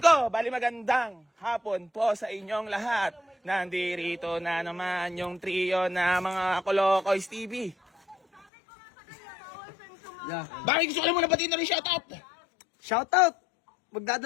ko, bali magandang hapon po sa inyong lahat. Nandirito na naman yung trio na mga Kolokoys TV. Yeah. Bakit gusto ko lang muna batiin na rin shoutout? Shoutout!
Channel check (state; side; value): drops out; right; at 8.5 s